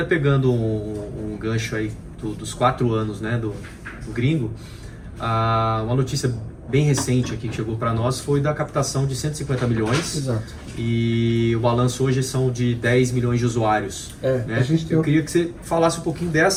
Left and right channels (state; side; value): identical; both; correlation 1.00